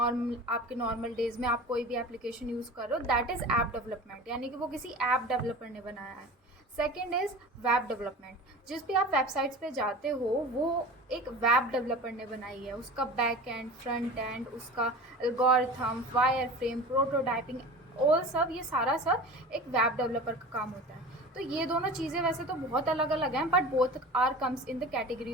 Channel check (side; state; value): both; normal; correlation 0.35